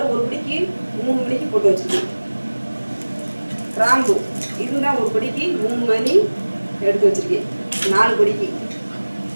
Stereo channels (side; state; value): both; inverted; correlation -1.00